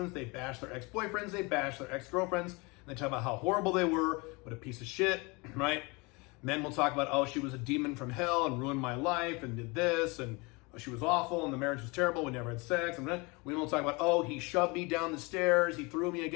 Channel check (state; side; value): quieter; right; 27.1 dB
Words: they bash their ex-boyfriends, they bash their ex-girlfriends, and they talk about how horrible they were, what a piece of shit, right? Men will talk about, oh, she was a demon from hell and ruined my life and did this, and she was awful and the marriage was terrible, we never had sex. And women will talk about, oh, he shoved me down the stairs, he threw me